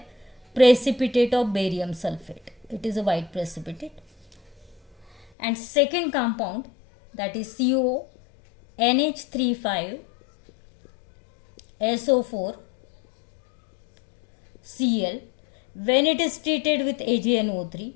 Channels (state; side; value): drops out; right; at 5.3 s